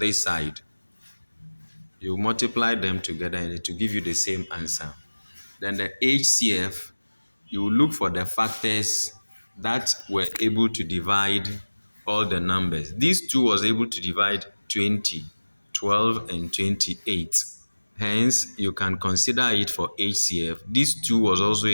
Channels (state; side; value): inverted; both; correlation -1.00